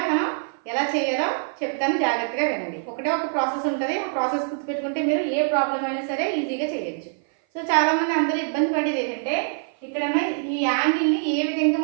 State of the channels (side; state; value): left; silent; 56 dB below the other